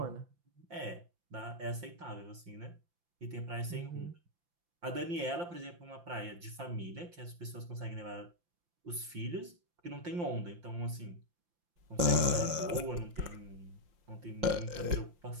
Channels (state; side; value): late; left; 5.7 ms